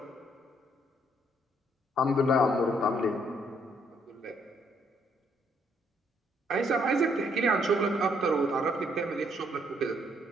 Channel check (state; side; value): normal; both; correlation 0.70